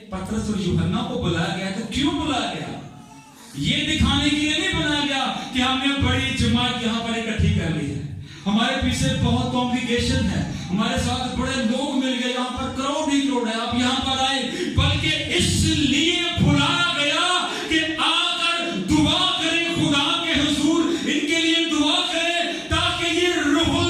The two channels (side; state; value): both; identical; correlation 1.00